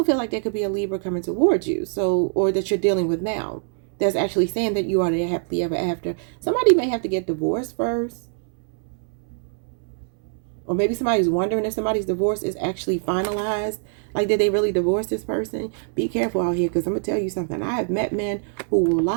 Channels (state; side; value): silent; left; 63 dB below the other